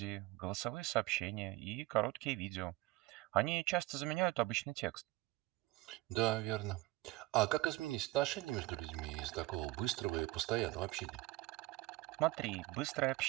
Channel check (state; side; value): quieter; left; 19.2 dB